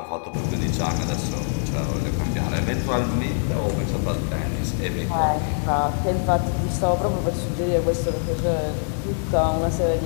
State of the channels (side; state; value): right; silent; digital silence